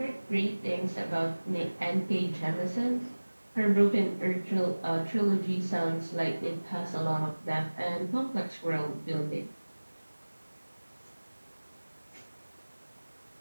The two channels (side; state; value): both; inverted; correlation -1.00